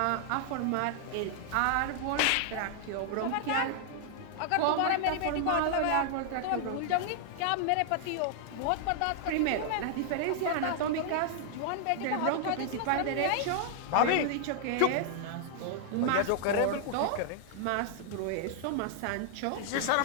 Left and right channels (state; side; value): different; both; correlation -0.01